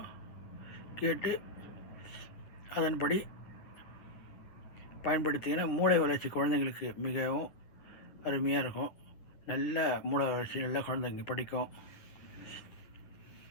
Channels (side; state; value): right; late; 9.7 ms